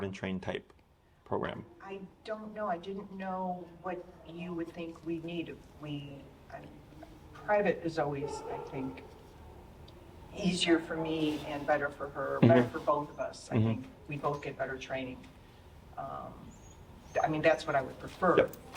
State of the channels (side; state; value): both; identical; correlation 1.00